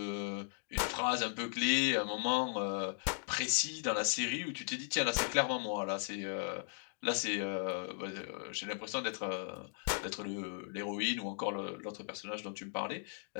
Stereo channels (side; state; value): right; silent; digital silence